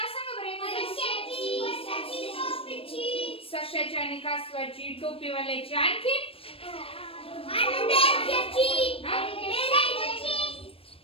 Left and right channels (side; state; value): right; late; 0.27 ms